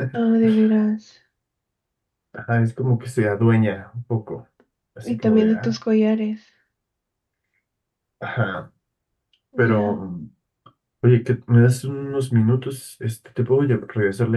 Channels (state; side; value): identical; both; correlation 1.00